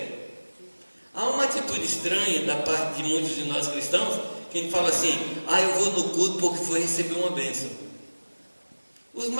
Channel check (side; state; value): both; inverted; correlation -1.00